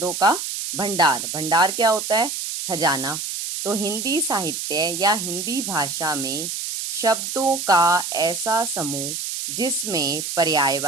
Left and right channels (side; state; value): right; noise; hiss, 5 dB below the sound